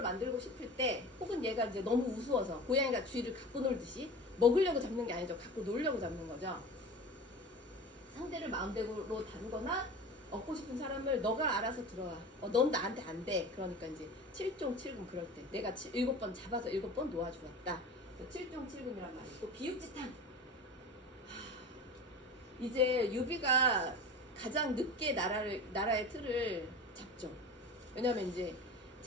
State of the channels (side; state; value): both; normal; correlation 0.34